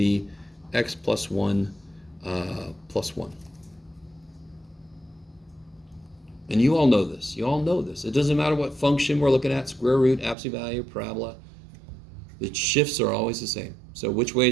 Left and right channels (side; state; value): left; drops out; at 10.4 s